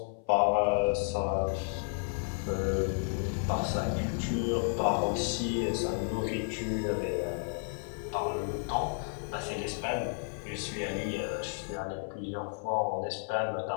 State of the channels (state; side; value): silent; right; 56 dB below the other